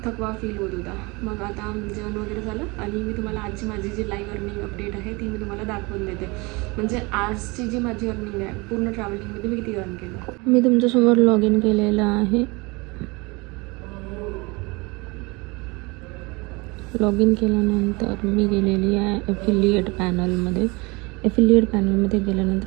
थकवा फील होत होता. मग आता जेवण वगैरे झालं आणि मी तुम्हाला आजची माझी जी लाईव्ह अर्निंग अपडेट आहे ती मी तुम्हाला दाखवून देते. म्हणजे आजची जी माझी अर्निंग आहे पूर्ण ट्रॅव्हलिंगमध्ये मी किती अर्न केलं. मी तुमच्यासमोर लॉग इन केलेलं आहे. लॉग इन केल्यानंतर मी गेलेली आहे ॲफिलिएट पॅनलमध्ये. एफिलिएट पॅनलमध्ये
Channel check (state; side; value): quieter; left; 26.2 dB